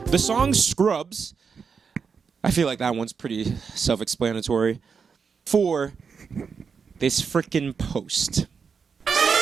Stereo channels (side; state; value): left; quieter; 5.9 dB